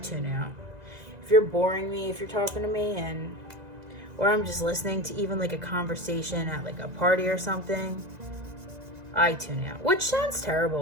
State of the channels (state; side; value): late; left; 1.9 ms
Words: tune out. If you're boring me, if you're talking to me, or I'm just listening to even like a conversation at like a party or something, I tune out. Which sounds